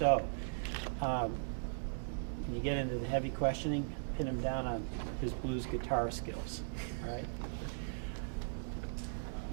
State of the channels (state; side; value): silent; left; digital silence